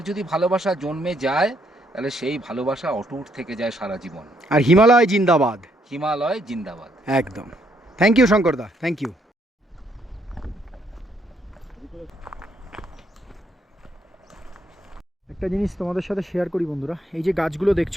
যদি ভালোবাসা জন্মে যায় তাহলে সেই ভালোবাসা অটুট থেকে যায় সারা জীবন। আর হিমালয় জিন্দাবাদ। হিমালয় জিন্দাবাদ। একদম। থ্যাংক ইউ শঙ্করদা, থ্যাংক ইউ। একটা জিনিস তোমাদের সাথে শেয়ার করি বন্ধুরা, এই যে গাছগুলো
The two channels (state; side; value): normal; both; correlation 0.72